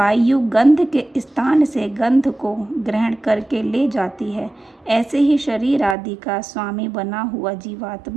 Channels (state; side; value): drops out; left; at 6.0 s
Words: गंध के स्थान से गंध को ग्रहण करके ले जाती है, ऐसे ही शरीर आदि का स्वामी बना हुआ